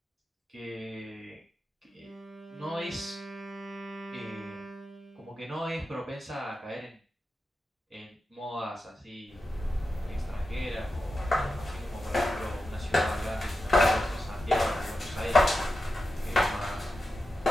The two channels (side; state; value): both; normal; correlation 0.91